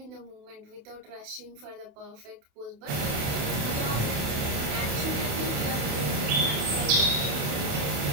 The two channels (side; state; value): left; late; 28 ms